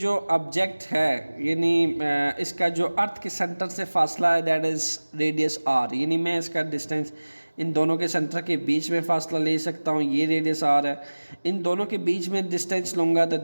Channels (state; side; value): inverted; both; correlation -1.00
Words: ऑब्जेक्ट है, यानी इसका जो अर्थ के सेंटर से फासला है, दैट इज़ रेडियस आर, यानी मैं इसका डिस्टेंस इन दोनों के सेंटर के बीच में फासला ले सकता हूँ, ये रेडियस आर है। इन दोनों के बीच में डिस्टेंस लूँगा तो